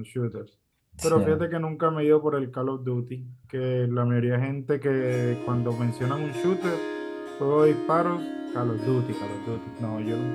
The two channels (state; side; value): identical; both; correlation 1.00